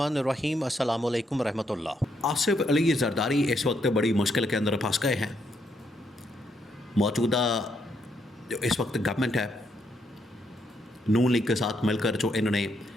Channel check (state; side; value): normal; both; correlation 0.76